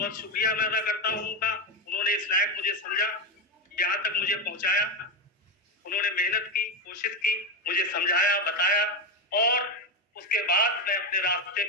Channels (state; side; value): normal; both; correlation 0.12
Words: शुक्रिया मैं अदा करता हूँ उनका। उन्होंने इस लायक मुझे समझा, यहाँ तक मुझे पहुँचाया। उन्होंने मेहनत की, कोशिश की, मुझे समझाया, बताया और उसके बाद मैं अपने रास्ते